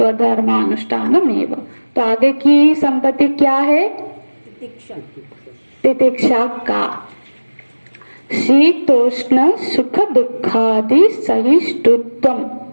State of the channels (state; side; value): inverted; both; correlation -1.00